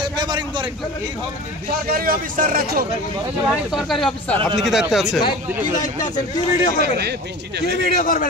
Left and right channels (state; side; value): normal; both; correlation 0.36